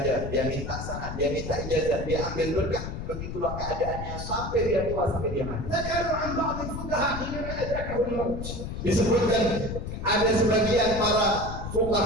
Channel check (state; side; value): noise; left; rumble, 6 dB below the sound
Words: dia minta sanad, dia minta ijazah, dia ambil berkah. Begitulah keadaannya sampai dia tua, sampai dia mati. ذكروا عن بعض الفقهاء حينما أدركه الموت. Disebutkan ada sebagian para